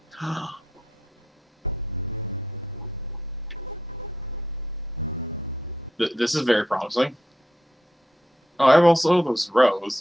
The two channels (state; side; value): normal; both; correlation 0.81